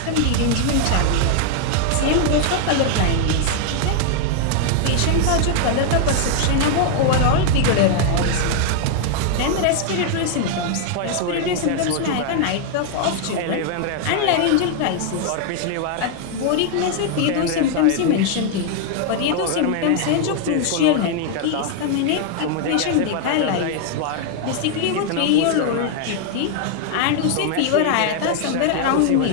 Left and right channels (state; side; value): different; both; correlation 0.00